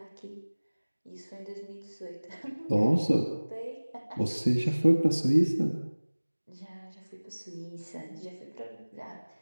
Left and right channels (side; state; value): both; inverted; correlation -1.00